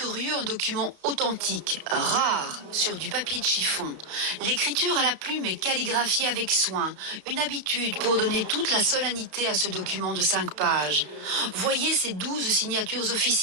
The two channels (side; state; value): left; late; 33 ms